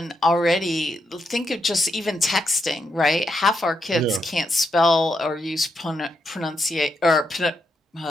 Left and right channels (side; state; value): both; normal; correlation 0.82